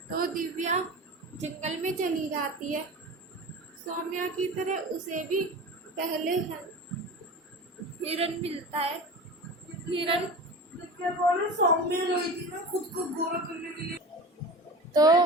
तो दिव्या जंगल में चली जाती है। सौम्या की तरह उसे भी पहले हिरन मिलता है। हिरन सौम्य रही थी ना खुद को गोरा करने के लिए। तो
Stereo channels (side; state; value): both; normal; correlation 0.33